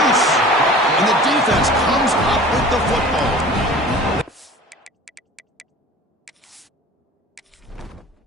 and the defense comes up with the football.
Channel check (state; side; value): normal; both; correlation 0.42